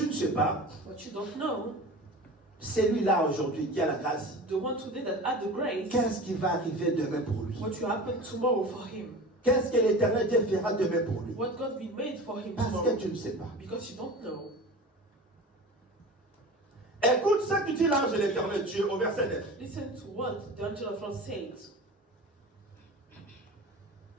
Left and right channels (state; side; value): normal; both; correlation 0.35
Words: ne sais pas, What you don't know, celui-là aujourd'hui qui a la grâce, the one today that had the grace, qu'est-ce qui va arriver demain pour lui? what will happen tomorrow for him. Qu'est-ce que l'Éternel Dieu fera demain pour lui? What God will made for him Parce que tomorrow. tu ne sais pas. Because you don't know. Écoute ce que dit l'ange de l'Éternel Dieu au verset 9. Listen to what the angel of God said.